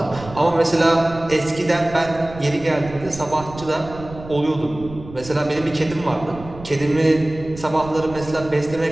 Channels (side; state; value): right; noise; rumble, 15 dB below the sound